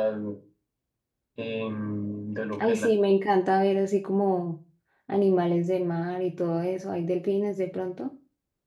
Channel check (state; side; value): identical; both; correlation 1.00